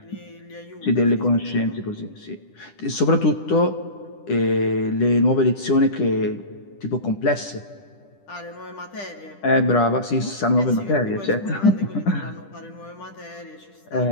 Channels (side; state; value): right; late; 10 ms